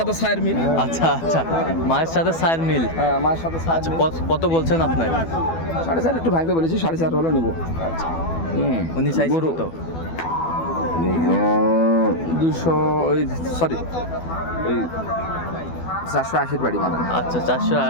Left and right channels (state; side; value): late; right; 12 ms